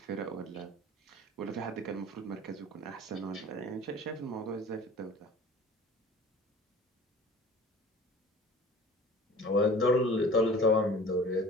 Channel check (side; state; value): both; normal; correlation 0.44